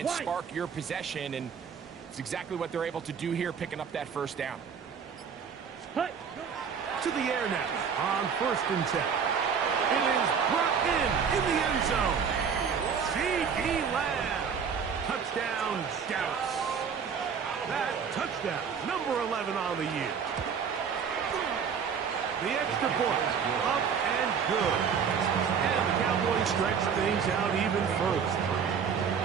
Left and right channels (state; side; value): quieter; left; 6.7 dB